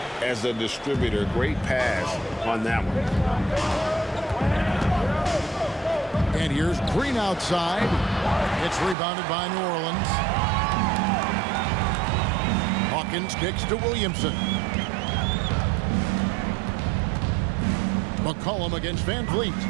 as a distributor. Great pass on that one. And here's Green outside. It's rebounded by New Orleans. Hawkins kicks to Williamson. McCollum against Van Vliet.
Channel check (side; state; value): left; drops out; at 9.0 s